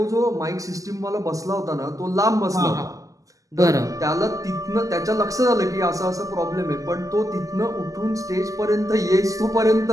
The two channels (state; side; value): late; left; 0.16 ms